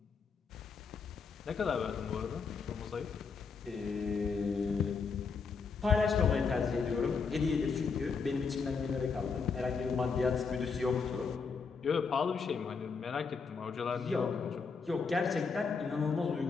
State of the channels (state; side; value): quieter; right; 5.3 dB